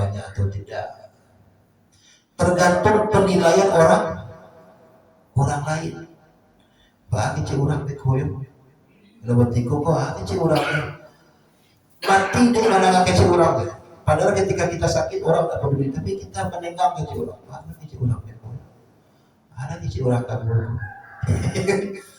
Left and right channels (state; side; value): identical; both; correlation 1.00